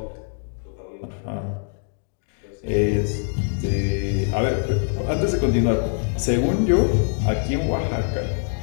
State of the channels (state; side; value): silent; right; digital silence